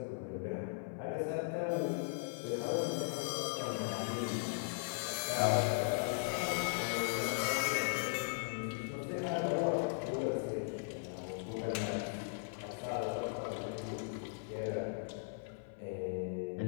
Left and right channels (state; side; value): silent; right; 52 dB below the other